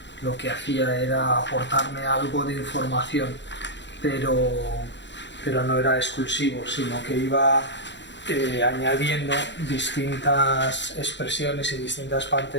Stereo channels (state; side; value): late; right; 0.52 ms